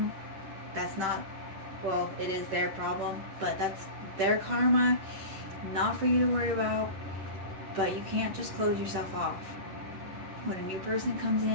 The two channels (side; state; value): left; late; 10 ms